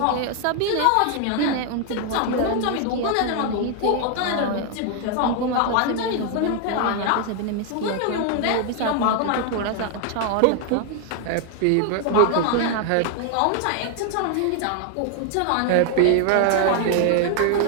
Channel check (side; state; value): both; different; correlation 0.00